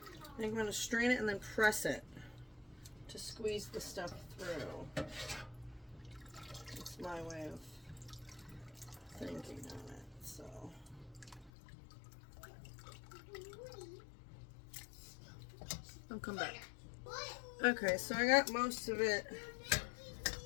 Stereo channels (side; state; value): right; drops out; at 11.5 s